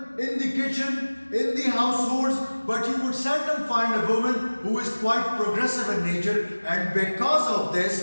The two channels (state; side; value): inverted; both; correlation -1.00